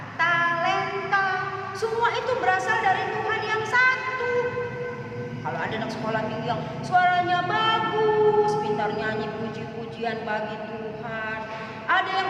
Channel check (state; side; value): identical; both; correlation 1.00